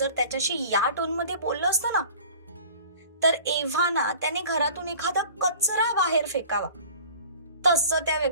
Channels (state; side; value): inverted; both; correlation -0.44